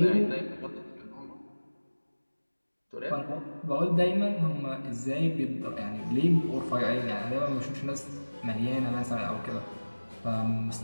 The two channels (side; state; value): both; inverted; correlation -1.00